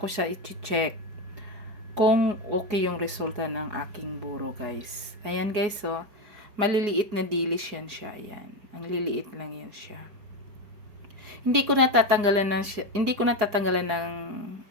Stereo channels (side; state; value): left; late; 4.8 ms